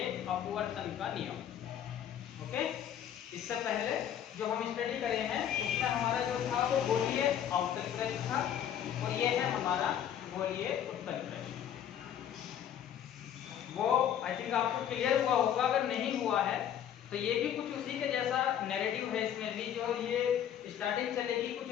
अपवर्तन का नियम। ओके, इससे पहले जो हम स्टडी करे हैं उसमें हमारा जो था वो गोलीय अवतल पृष्ठ था और ये है हमारा गोलीय उत्तल पृष्ठ। वो आई थिंक आपको क्लियर हुआ होगा, अगर नहीं हुआ है तो ये भी कुछ उसी के जैसा नैरेटिव है। इसमें भी जो ये स्टार्टिंग चलेगी कुछ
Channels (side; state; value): right; quieter; 9.9 dB